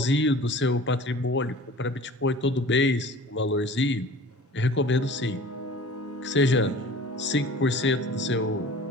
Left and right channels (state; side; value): normal; both; correlation 0.43